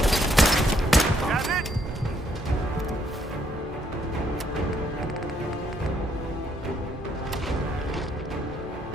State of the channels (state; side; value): normal; both; correlation 0.71